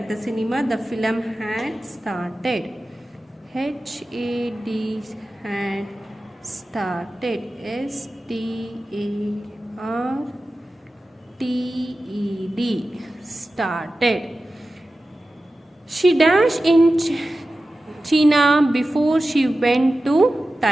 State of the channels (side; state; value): both; normal; correlation 0.94